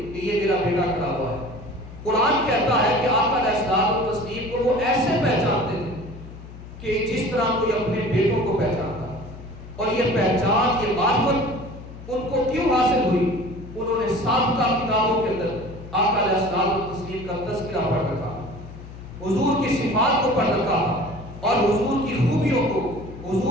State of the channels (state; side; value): noise; left; hum, 15 dB below the sound